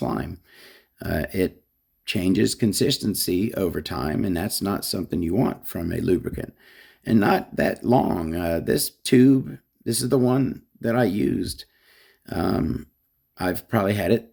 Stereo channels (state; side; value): identical; both; correlation 1.00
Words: It changes consistency over time, and that's not something you want from a lubricant. And not that long. This tube, this is the one that I used. I've probably had